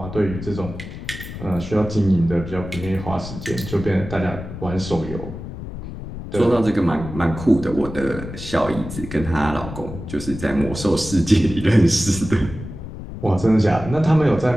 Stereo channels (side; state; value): left; noise; rumble, 10 dB below the sound